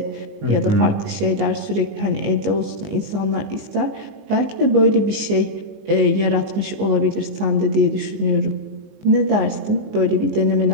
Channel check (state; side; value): late; left; 19 ms